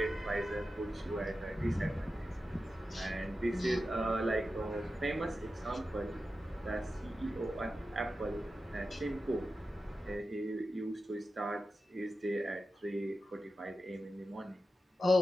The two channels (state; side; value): normal; both; correlation 0.92